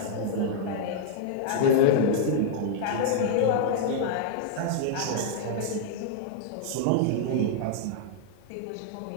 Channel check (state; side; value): different; both; correlation -0.01